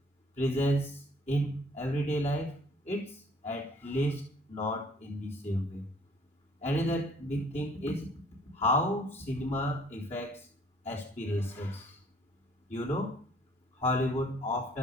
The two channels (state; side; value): normal; both; correlation 0.58